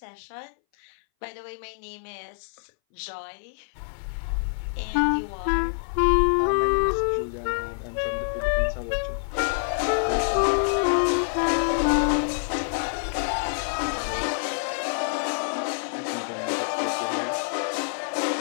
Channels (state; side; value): silent; right; 60 dB below the other